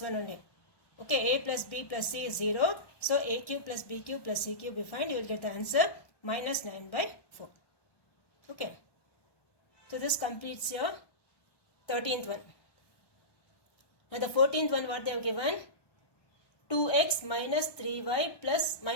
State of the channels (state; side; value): late; right; 1.1 ms